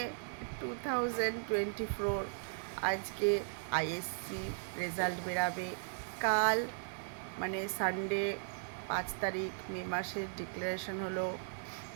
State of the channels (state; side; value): silent; left; digital silence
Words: 2024 আজকে আইএসসি রেজাল্ট বেরাবে। কাল মানে সানডে 5 তারিখ মে মাসের ডিক্লারেশন হলো